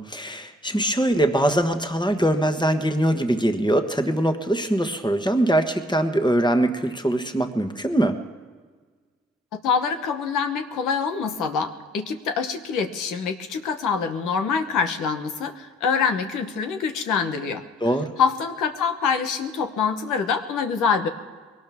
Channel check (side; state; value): both; normal; correlation 0.60